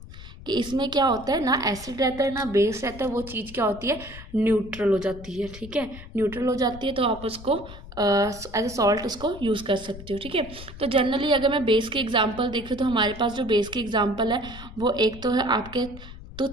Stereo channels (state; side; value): noise; left; rumble, 15 dB below the sound